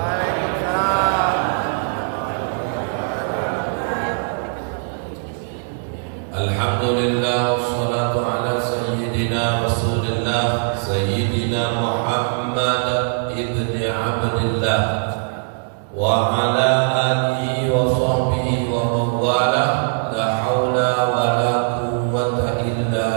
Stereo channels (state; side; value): silent; left; 65 dB below the other